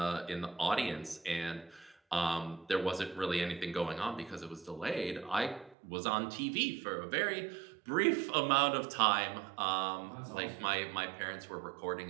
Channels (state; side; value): drops out; left; at 5.8 s